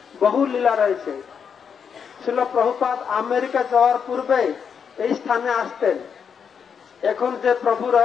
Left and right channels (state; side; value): quieter; right; 6.9 dB